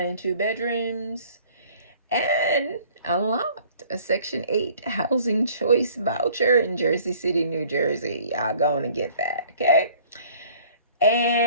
and 2 bedrooms. And unlocked a Section 8 Housing Choice Voucher in Jersey City, New Jersey. Y'all going to get that, okay?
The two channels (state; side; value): inverted; both; correlation -0.54